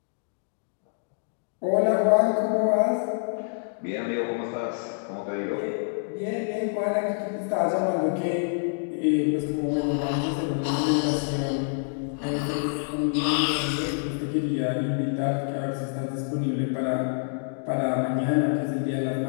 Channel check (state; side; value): silent; right; digital silence